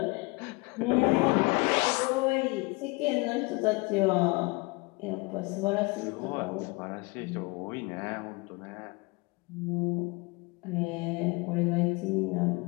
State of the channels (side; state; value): right; quieter; 26.8 dB